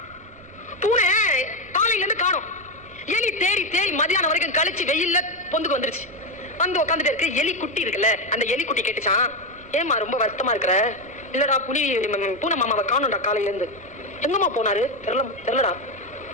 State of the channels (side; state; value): right; noise; rumble, 24 dB below the sound